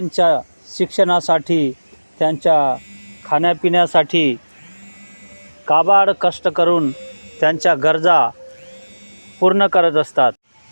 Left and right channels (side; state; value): both; inverted; correlation -1.00